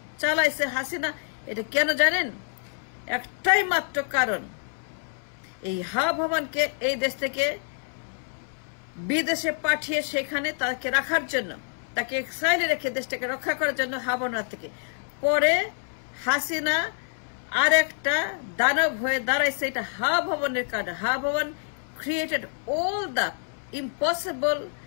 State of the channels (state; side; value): silent; right; 60 dB below the other